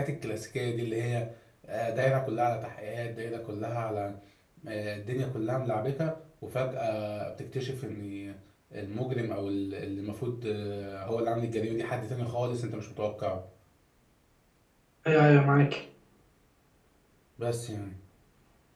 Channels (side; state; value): both; identical; correlation 1.00